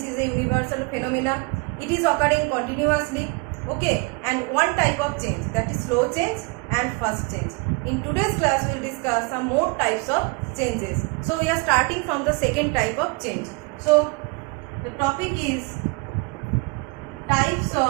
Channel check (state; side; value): quieter; left; 29.9 dB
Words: is a universal phenomena. It is occurring continuously. Okay, and one type of change, that is slow change and fast change. In today's class, we will discuss some more types of changes. So we are starting from the second type of change. So the topic is types